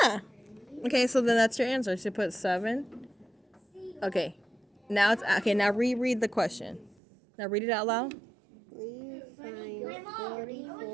Okay, so then that's your answer. So you put 7. Okay. Now it's okay. Now reread the question. Now read it out loud. We find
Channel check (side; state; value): left; drops out; at 7.0 s